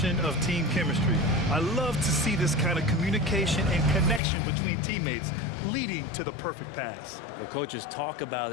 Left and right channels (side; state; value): right; drops out; at 4.2 s